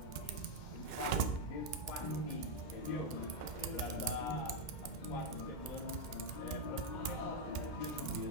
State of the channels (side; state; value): right; late; 2.1 ms